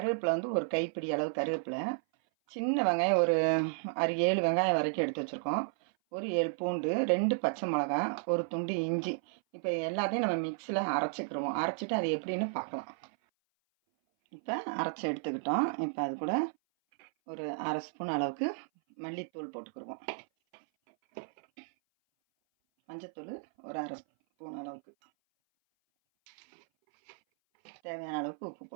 வந்து ஒரு கைப்பிடி அளவு கருவேப்பிலை, சின்ன வெங்காயம் ஒரு 6-7 வெங்காயம் வரைக்கும் எடுத்து வச்சுருக்கோம், ஒரு 7 பூண்டு, 2 பச்சை மிளகா, ஒரு துண்டு இஞ்சி. இப்போ எல்லாத்தையும் நம்ம மிக்ஸியில் அரைச்சிக்கிடுவோம். அரைச்சிட்டு அது எப்படின்னு பார்க்கலாம். இப்போ அரைச்சி எடுத்துக்கிட்டோம். இப்போ அது கூட ஒரு 1/2 ஸ்பூன் அளவுக்கு மல்லித்தூள் போட்டுக்கிடுவோம். மஞ்சத்தூள் ஒரு 1/2 ஸ்பூன் அளவுக்கு, தேவையான அளவுக்கு உப்பு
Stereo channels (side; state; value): left; silent; 56 dB below the other